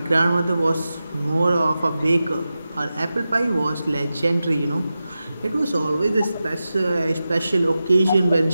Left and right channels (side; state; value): both; inverted; correlation -0.93